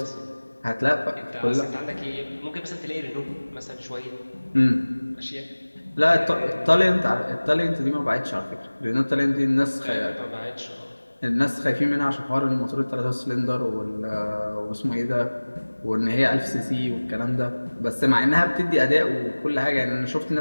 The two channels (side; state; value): both; inverted; correlation -1.00